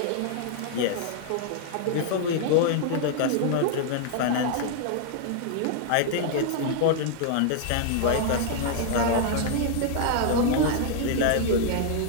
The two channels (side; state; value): both; different; correlation 0.00